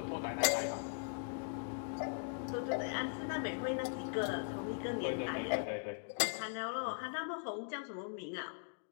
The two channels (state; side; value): silent; right; digital silence